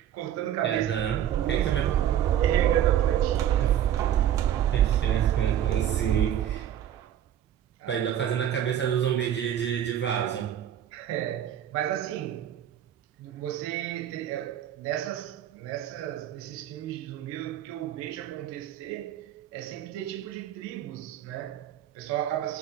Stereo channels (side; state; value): left; quieter; 10.6 dB